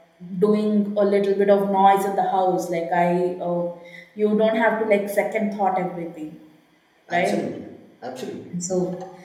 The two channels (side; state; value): both; identical; correlation 1.00